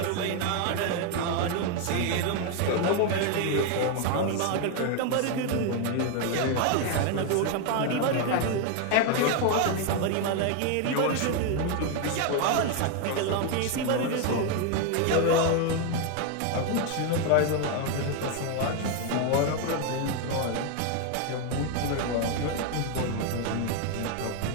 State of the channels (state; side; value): different; both; correlation 0.01